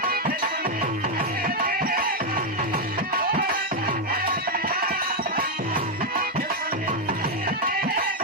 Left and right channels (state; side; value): normal; both; correlation 0.02